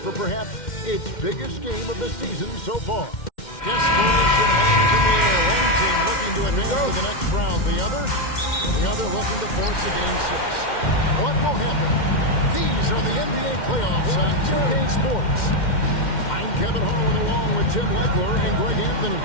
perhaps its biggest game of the season so far. Desperation hangs in the air. One team looking to advance to the next round. The other looking to force a game 6. What will happen? These are the NBA playoffs on 2K Sports. I'm Kevin Harlan along with Tim Legler and Greg Anthony.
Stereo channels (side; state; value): right; late; 2.1 ms